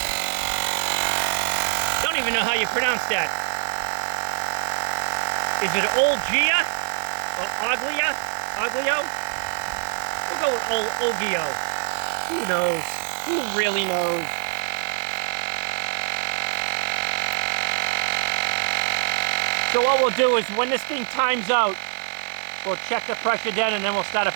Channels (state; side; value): silent; left; digital silence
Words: don't even know how you pronounce that. Is it Olgeo or Olgeo? Olgeo? We'll go with Olgeo. Who knows? Who really knows? So what we'll do is when this thing times out, we'll check the pressure then and then we'll start it